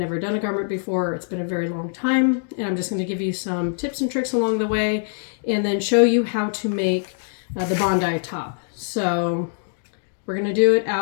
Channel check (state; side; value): silent; right; digital silence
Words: done a garment before, it's been a very long time, and I'm just going to give you some tips and tricks along the way, and then show you how to make the Bondi top. So we're going to do it